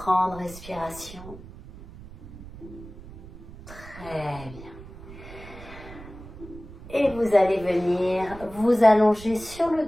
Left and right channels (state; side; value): noise; right; rumble, 16 dB below the sound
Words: respirations. Très bien. Et vous allez venir vous allonger sur le